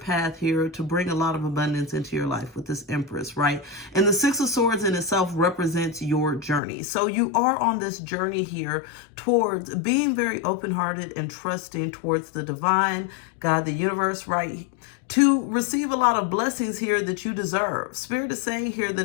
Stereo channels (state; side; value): drops out; right; at 6.6 s